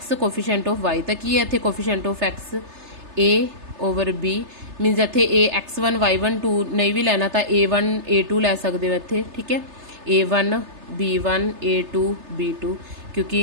coefficient of y। ਤਾਂ ਕੀ ਹੈ ਇੱਥੇ coefficient of x a over b, means ਇੱਥੇ a x1 y1 2 ਨਹੀਂ ਵੀ ਲੈਣਾ ਤਾਂ a1 a2 ਲੈ ਸਕਦੇ ਹੋ ਇੱਥੇ। ਠੀਕ ਹੈ, a1 b1 a2 b2, ਕਿਉਂਕਿ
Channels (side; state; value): left; late; 3.3 ms